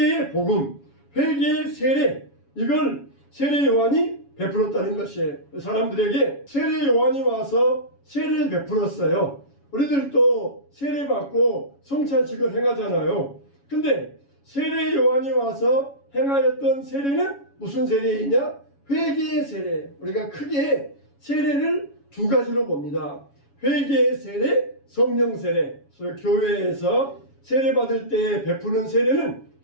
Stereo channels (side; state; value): right; late; 7.2 ms